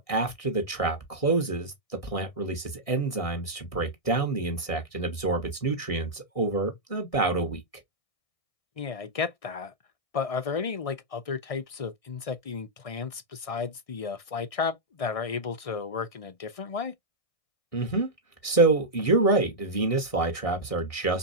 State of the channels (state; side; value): late; right; 1.6 ms